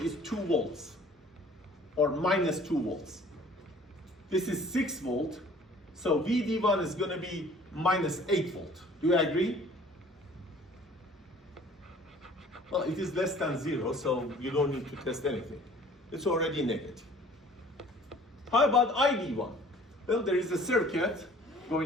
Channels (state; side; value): normal; both; correlation 0.52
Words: 2 volts or minus 2 volts. This is 6 volt, so VD1 is going to be minus 8 volt. Do you agree? Well, it is less than 0, so you don't need to test anything. It's already negative. How about ID1? Well, there is a circuit